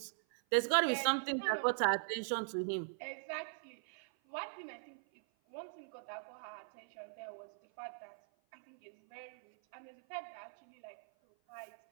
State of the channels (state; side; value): silent; left; 51 dB below the other